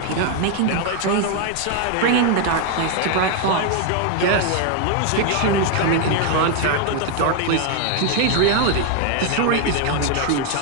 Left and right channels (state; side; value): different; both; correlation 0.00